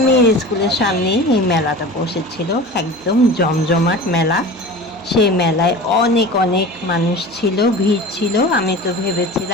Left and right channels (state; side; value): noise; right; hum, 26 dB below the sound